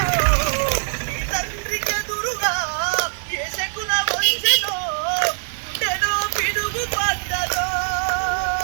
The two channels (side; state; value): left; silent; 64 dB below the other